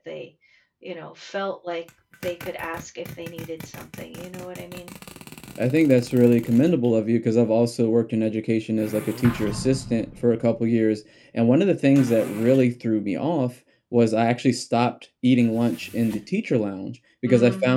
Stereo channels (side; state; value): both; identical; correlation 1.00